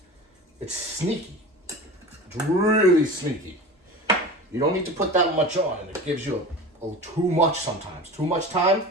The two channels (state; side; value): normal; both; correlation 0.33